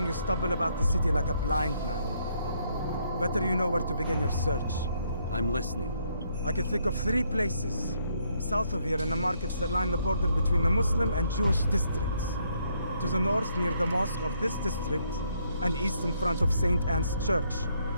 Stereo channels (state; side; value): inverted; both; correlation -0.72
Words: you stumble about the city like a blind man. Better you know where to begin your search. I'm listening. I can think of 3 places. South of here in the markets that line the border between the Muslim and Jewish districts. To the north near the mosque of this district, and east in front of St. Anne's Church,